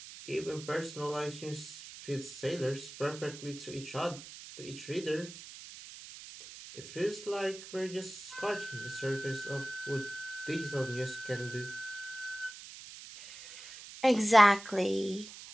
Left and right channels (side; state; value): right; noise; hiss, 14 dB below the sound